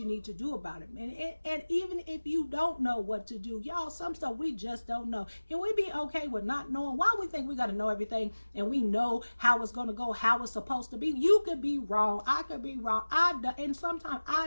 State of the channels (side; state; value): both; inverted; correlation -1.00